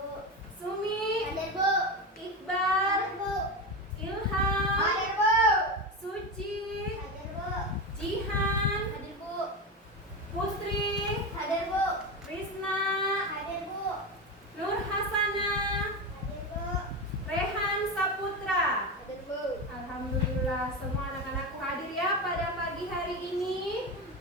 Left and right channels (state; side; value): normal; both; correlation 0.19